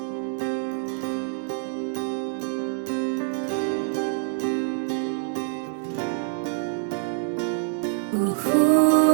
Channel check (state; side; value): silent; left; digital silence